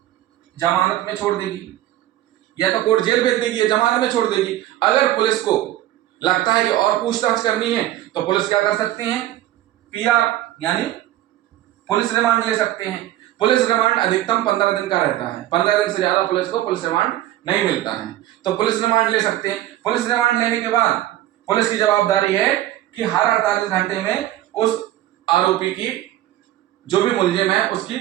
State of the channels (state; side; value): quieter; left; 14.2 dB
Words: जमानत में छोड़ देगी, या तो कोर्ट जेल भेज देगी या जमानत में छोड़ देगी। अगर पुलिस को लगता है कि और पूछताछ करनी है तो पुलिस क्या कर सकते हैं? पीआर यानी पुलिस रिमांड ले सकते हैं। पुलिस रिमांड अधिकतम 15 दिन का रहता है, 15 दिन से ज्यादा पुलिस को पुलिस रिमांड नहीं मिलता है, तो पुलिस रिमांड ले सकते हैं। पुलिस रिमांड लेने के बाद पुलिस की जवाबदारी है कि हर 48 घंटे में उस आरोपी की, जो भी मुलजिम है, उसकी